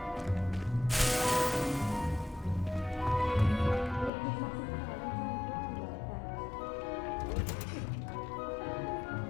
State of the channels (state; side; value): drops out; right; at 4.1 s